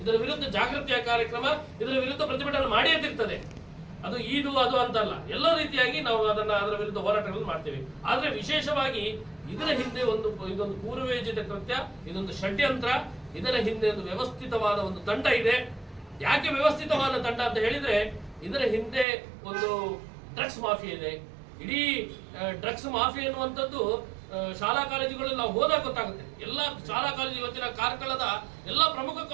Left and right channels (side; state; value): left; drops out; at 19.1 s